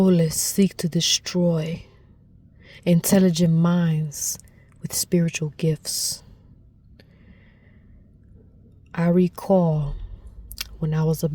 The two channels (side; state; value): both; identical; correlation 1.00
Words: seek to destroy intelligent minds with spiritual gifts. I recall when I was